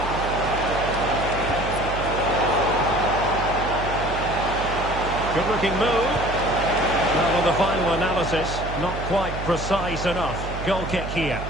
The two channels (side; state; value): right; noise; hum, 7 dB below the sound